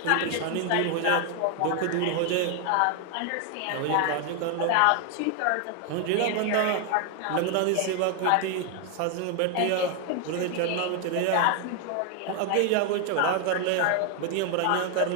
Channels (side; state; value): both; different; correlation 0.01